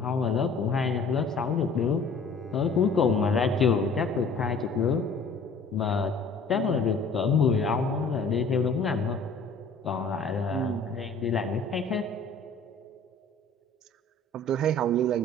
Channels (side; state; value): right; quieter; 3.3 dB